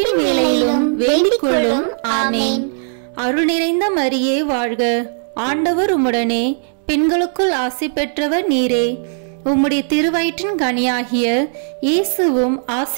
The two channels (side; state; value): left; silent; 67 dB below the other